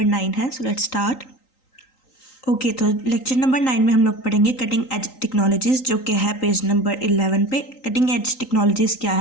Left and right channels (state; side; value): late; right; 3.9 ms